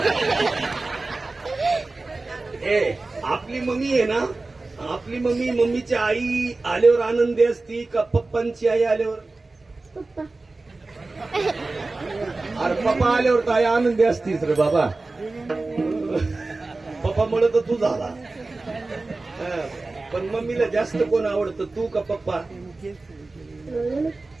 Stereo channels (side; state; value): left; quieter; 3.4 dB